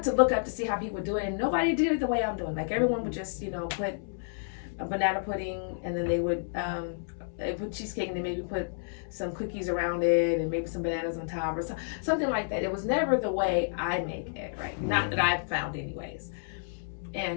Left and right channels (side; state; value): right; silent; digital silence